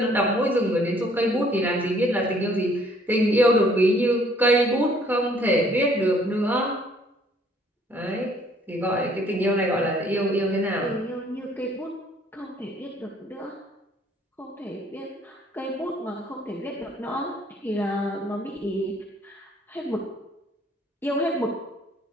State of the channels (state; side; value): normal; both; correlation 0.61